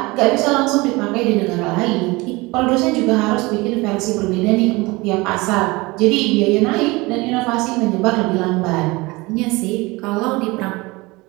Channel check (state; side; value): quieter; left; 23.1 dB